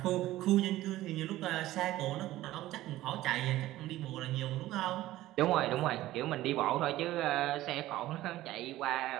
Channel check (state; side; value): quieter; left; 15.7 dB